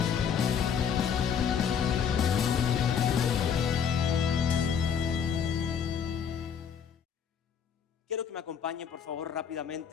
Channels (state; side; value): quieter; right; 7.5 dB